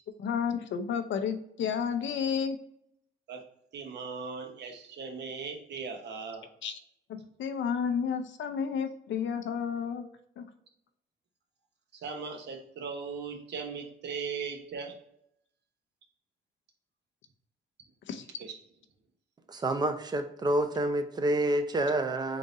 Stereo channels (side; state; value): both; normal; correlation 0.47